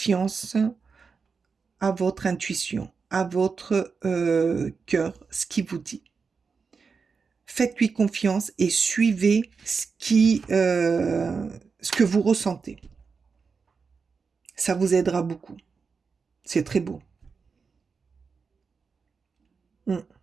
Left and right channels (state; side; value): quieter; left; 5.2 dB